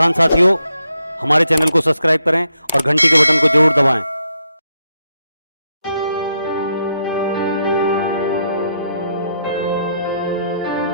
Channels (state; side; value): inverted; both; correlation -0.80